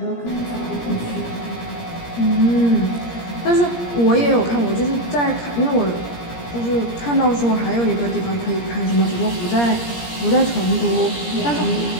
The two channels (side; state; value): right; late; 17 ms